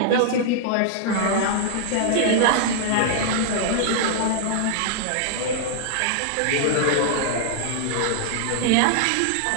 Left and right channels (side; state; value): both; different; correlation -0.01